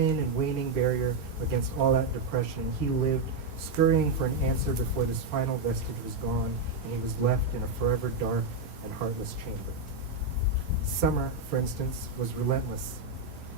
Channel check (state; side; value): quieter; left; 3.5 dB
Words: and waning barrier against all that depression. He lived, scurrying for an answer before this final vestige was gone, and he was left in a forever dark and heartless chamber. Summer, for instance, was relentless.